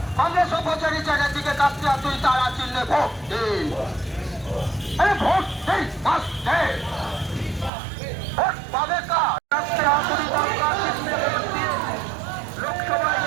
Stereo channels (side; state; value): left; drops out; at 7.7 s